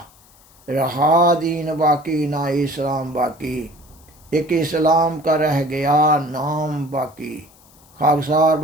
رہا دین باقی نہ اسلام باقی، ایک اسلام کا رہ گیا نام باقی۔ خاکسار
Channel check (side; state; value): left; noise; hiss, 28 dB below the sound